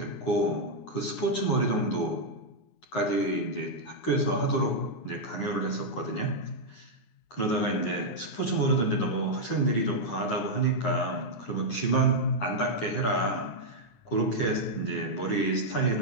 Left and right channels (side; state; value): right; late; 9.5 ms